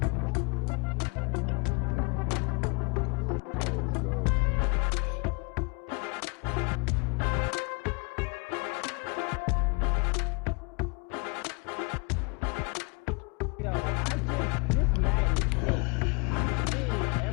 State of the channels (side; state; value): right; quieter; 33.0 dB